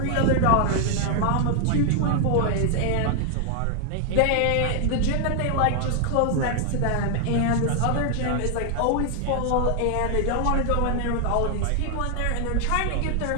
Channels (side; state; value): both; different; correlation 0.00